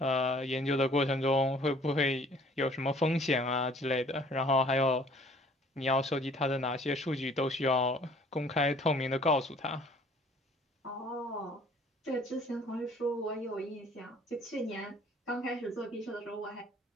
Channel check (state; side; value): normal; both; correlation 0.55